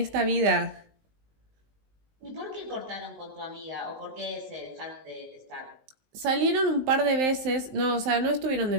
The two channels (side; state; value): left; late; 19 ms